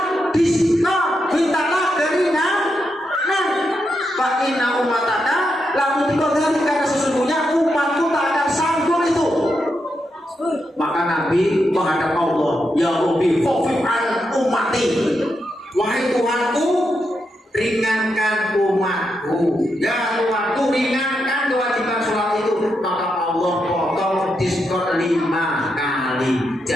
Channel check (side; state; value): both; normal; correlation 0.84